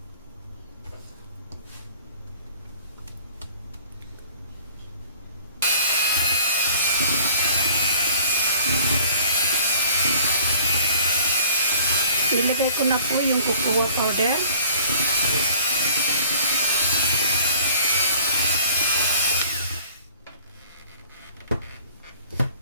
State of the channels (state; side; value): inverted; both; correlation -0.50